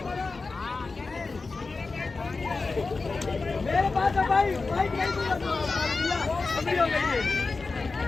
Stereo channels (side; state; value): right; quieter; 4.0 dB